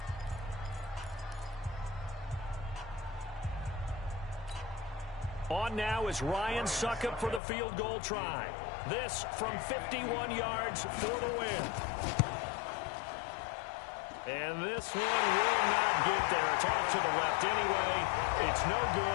On now is Ryan Suckup for the field goal try. This from 51 yards for the win. And this one will not get there. It's off to the left anyway. It's no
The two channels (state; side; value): drops out; right; at 7.4 s